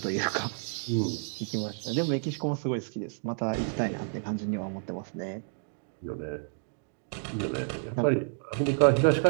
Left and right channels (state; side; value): silent; left; 58 dB below the other